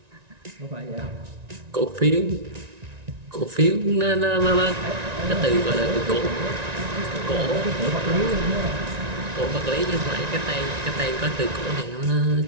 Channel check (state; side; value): late; left; 1.9 ms